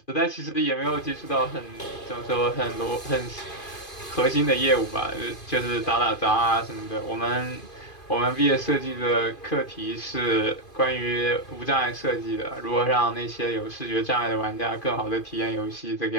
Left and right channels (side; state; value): right; late; 2.5 ms